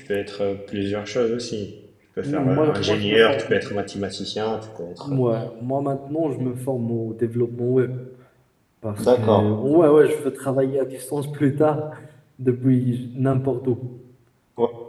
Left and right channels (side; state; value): both; identical; correlation 1.00